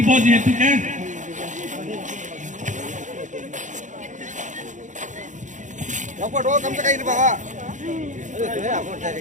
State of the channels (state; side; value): late; left; 0.36 ms